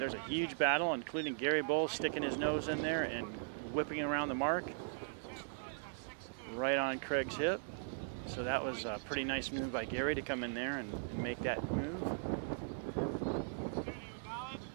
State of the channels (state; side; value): silent; left; 52 dB below the other